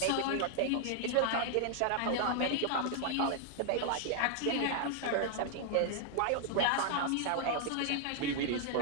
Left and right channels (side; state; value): both; different; correlation 0.00